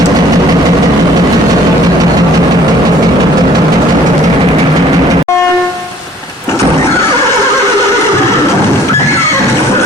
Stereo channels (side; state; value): both; normal; correlation 0.55